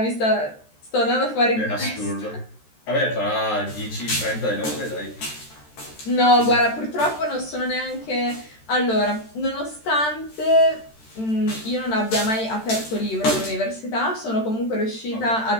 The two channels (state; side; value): late; right; 13 ms